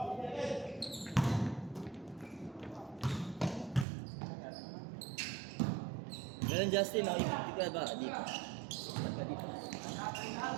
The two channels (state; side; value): drops out; left; at 3.9 s